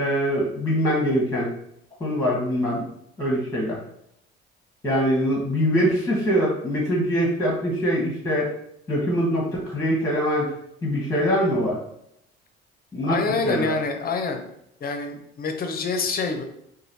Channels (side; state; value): both; normal; correlation 0.43